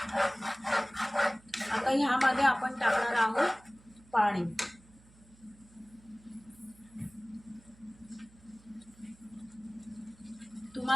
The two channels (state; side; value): noise; right; hum, 26 dB below the sound